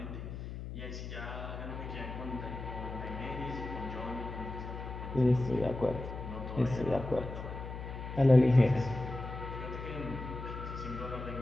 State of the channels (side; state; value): left; noise; hum, 8 dB below the sound